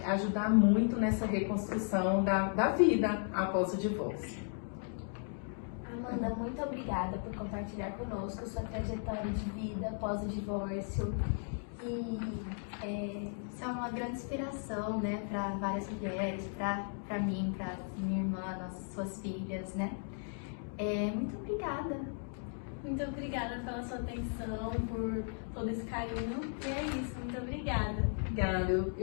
ajudar muito nessa reconstrução da vida após o divórcio. Amanda, muito obrigada por compartilhar conosco sua trajetória de vida após o divórcio. E Isso é uma grande inspiração, né, para várias mulheres, para mim, para minha irmã, suas filhas, né? Muito obrigada. Muito obrigada pela sua atenção, por todo esse carinho. E é isso, muito obrigada. Obrigada,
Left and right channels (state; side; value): silent; right; 54 dB below the other